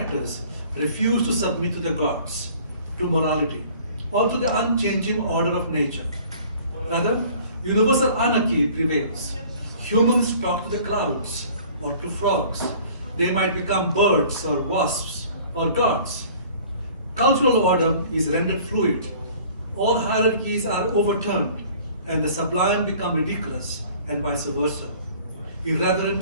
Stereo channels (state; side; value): inverted; both; correlation -0.50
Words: refuse to submit to the gods, to morality, or to the unchanging order of nature. Rather, universal anarchy prevails. Humans talk to the clouds or to frogs. They might become birds or wasps or gods. Cultural order is rendered fluid. All hierarchies are overturned, and the sublime become ridiculous, and vice versa.